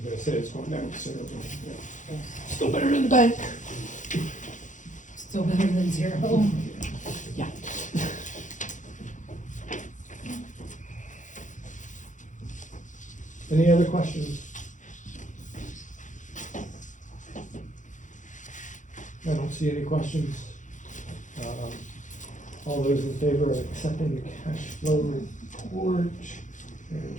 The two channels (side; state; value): right; late; 0.36 ms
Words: gonna say it's going down considerably. Yeah. Yes. Still better than the bank. Still better than zero. Yeah. Any other questions? I don't see any questions. All those in favor of accepting the cash flow report